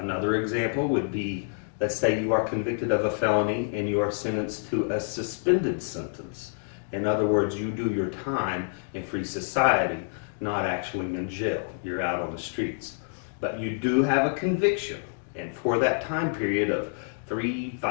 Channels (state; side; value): silent; right; digital silence